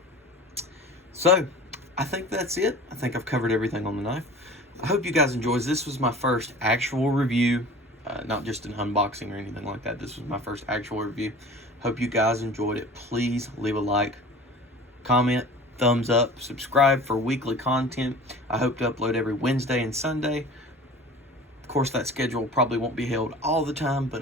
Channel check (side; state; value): both; normal; correlation 0.41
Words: So, I think that's it. I think I've covered everything on the knife. I hope you guys enjoyed. This was my first actual review, not just an unboxing or anything like that. This was my first actual review. Hope you guys enjoyed it. Please leave a like, comment, thumbs up, subscribe for weekly content. I hope to upload every Wednesday and Sunday. Of course, that schedule probably won't be held all the time, but